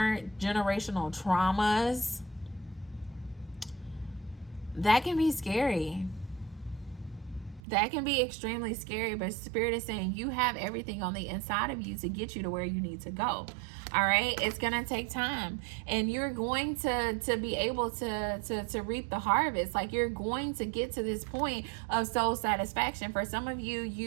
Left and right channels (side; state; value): left; drops out; at 7.6 s